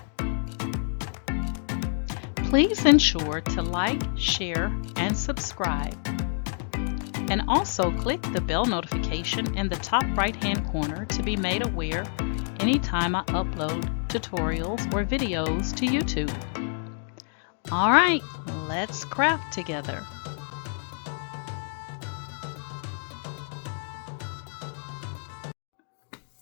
Please ensure to like, share, and subscribe. And also click the bell notification in the top right-hand corner to be made aware anytime I upload tutorials or videos to YouTube. All right, let's craft together.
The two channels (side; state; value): right; silent; 59 dB below the other